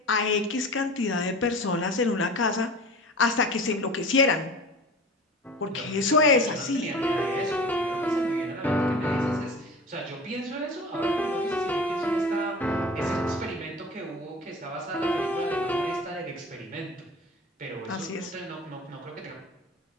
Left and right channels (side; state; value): both; normal; correlation 0.37